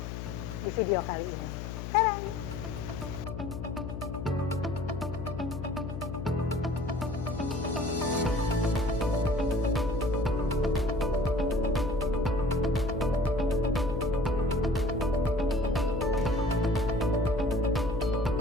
di video kali ini. Tadang!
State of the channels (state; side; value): noise; left; hum, 7 dB below the sound